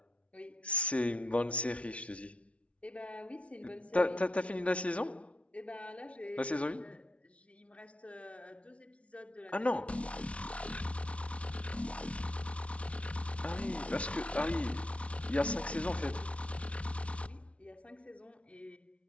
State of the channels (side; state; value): right; late; 0.062 ms